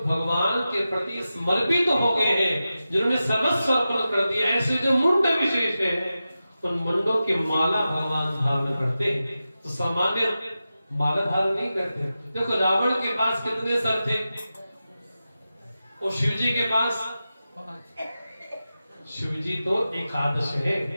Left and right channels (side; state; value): both; inverted; correlation -0.93